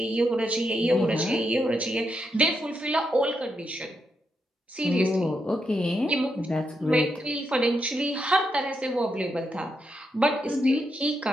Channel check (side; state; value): both; normal; correlation 0.82